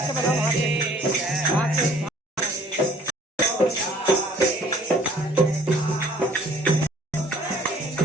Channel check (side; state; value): both; normal; correlation 0.57